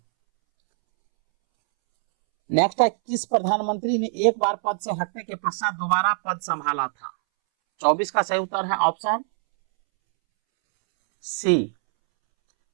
नेक्स्ट है किस प्रधानमंत्री ने एक बार पद से हटने के पश्चात दोबारा पद संभाला था? 24 का सही उत्तर है ऑप्शन सी,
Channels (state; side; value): silent; left; 63 dB below the other